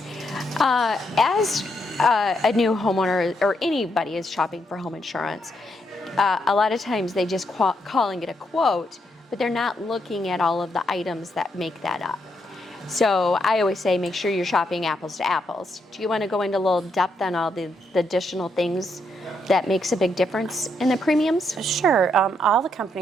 As a new homeowner, or anybody is shopping for home insurance, a lot of times they just calling it a quote, but they're not looking at all of the items that make that up. So I always say make sure you're shopping apples to apples. Do you want to go into a little depth on all the additional things that makes a big difference in the premiums? Sure. All the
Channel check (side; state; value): both; normal; correlation 0.78